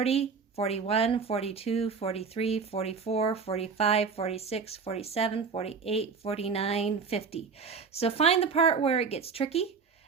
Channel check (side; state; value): left; quieter; 5.4 dB